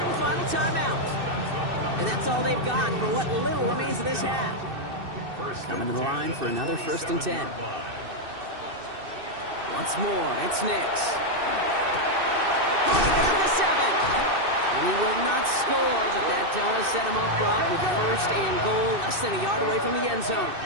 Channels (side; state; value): left; late; 2.6 ms